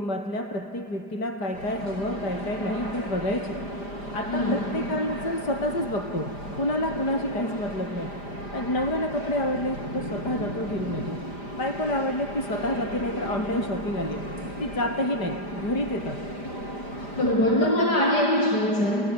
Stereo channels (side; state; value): right; late; 5.0 ms